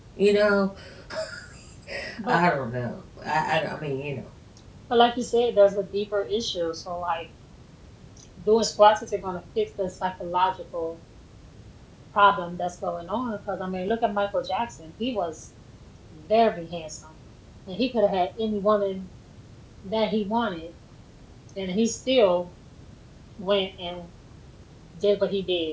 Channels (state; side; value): identical; both; correlation 1.00